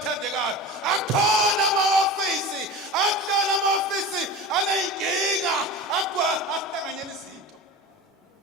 Akhona ama-ofisi ahlala ama-ofisi aneyinkinga ahlanganyela izinto.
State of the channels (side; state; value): both; normal; correlation 0.32